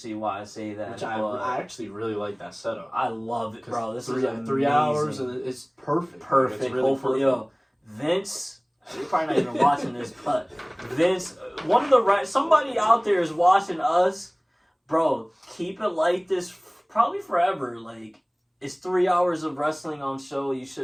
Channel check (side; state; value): both; identical; correlation 1.00